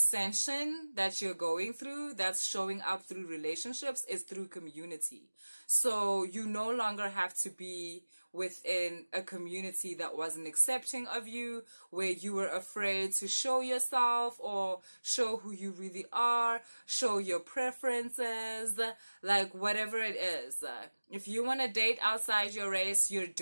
that you're going through, that's showing up through relationships, is through community. So you no longer have to be within a community that wasn't accepting of you, where you were afraid to show yourself or show who you really are, show your preferences, like whatever it is. If you want to date outside your race, you're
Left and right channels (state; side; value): inverted; both; correlation -1.00